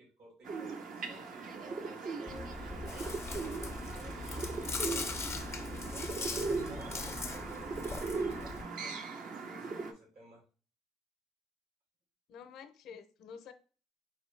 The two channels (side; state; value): both; normal; correlation 0.65